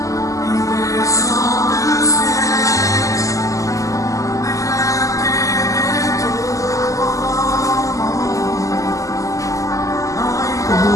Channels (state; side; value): late; right; 0.16 ms